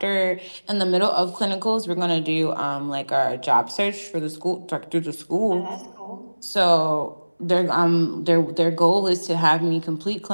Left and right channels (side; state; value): both; inverted; correlation -1.00